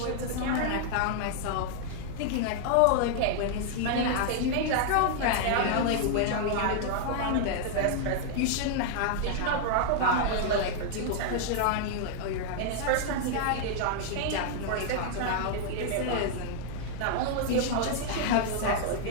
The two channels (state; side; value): different; both; correlation -0.01